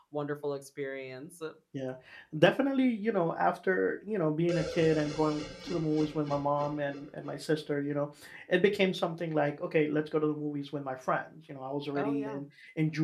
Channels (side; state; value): both; identical; correlation 1.00